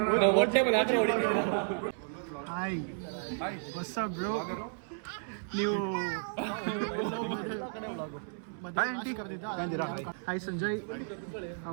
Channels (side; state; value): left; silent; 56 dB below the other